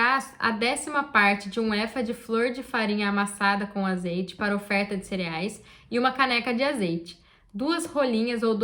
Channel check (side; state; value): both; identical; correlation 1.00